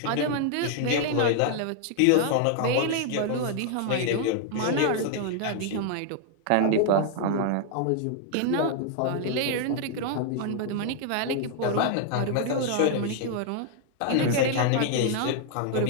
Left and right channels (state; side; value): different; both; correlation 0.00